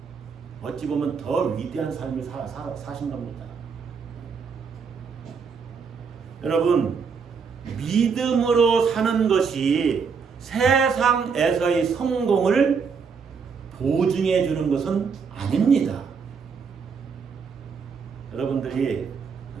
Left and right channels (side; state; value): left; quieter; 5.8 dB